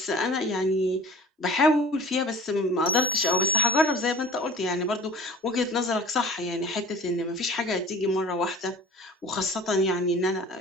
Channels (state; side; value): normal; both; correlation 0.42